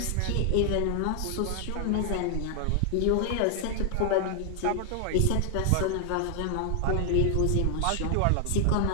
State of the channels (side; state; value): both; different; correlation 0.00